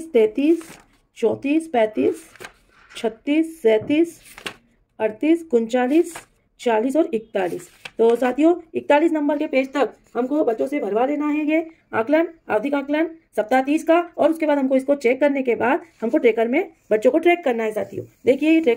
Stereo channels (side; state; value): both; identical; correlation 1.00